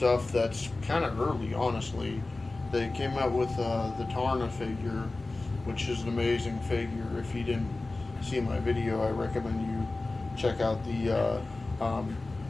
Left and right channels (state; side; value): quieter; right; 3.2 dB